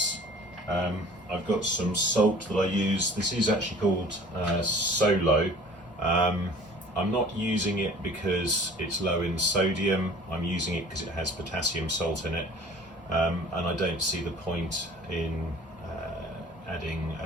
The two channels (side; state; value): both; normal; correlation 0.48